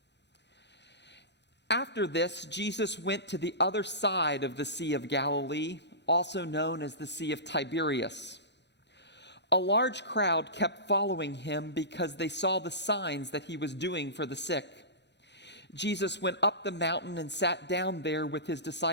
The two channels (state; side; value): late; right; 0.50 ms